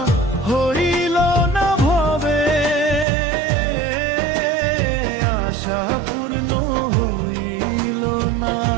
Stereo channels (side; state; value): left; drops out; at 3.1 s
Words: হইল না ভবে আশা পূর্ণ হইল না।